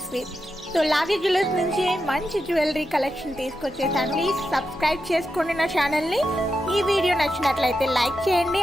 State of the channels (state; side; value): normal; both; correlation 0.87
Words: సో లావీ జ్యువెలర్స్ నుంచి మంచి జ్యువెలరీ కలెక్షన్ తీసుకొచ్చేసాను. ప్లీజ్ సబ్స్క్రైబ్ చేసుకోండి నా ఛానల్ని. ఈ వీడియో నచ్చినట్లయితే లైక్ చేయండి